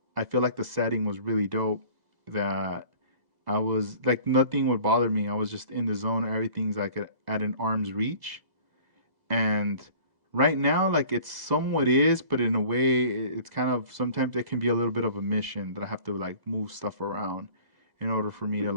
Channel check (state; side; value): late; left; 2.0 ms